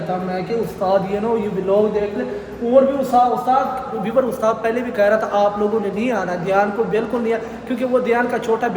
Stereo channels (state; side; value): identical; both; correlation 1.00